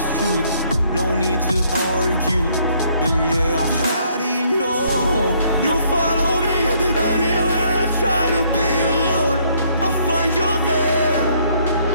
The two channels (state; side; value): inverted; both; correlation -0.66